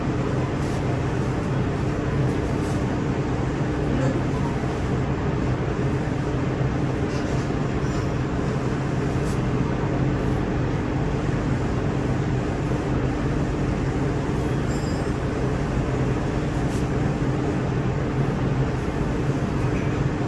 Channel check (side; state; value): both; identical; correlation 1.00